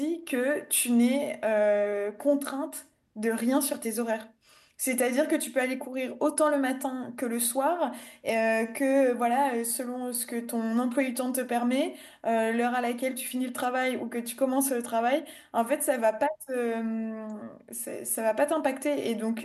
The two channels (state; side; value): identical; both; correlation 1.00